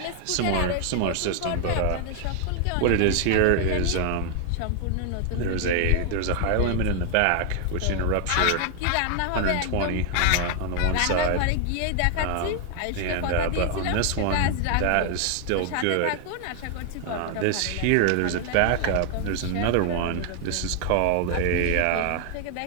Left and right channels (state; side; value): different; both; correlation 0.00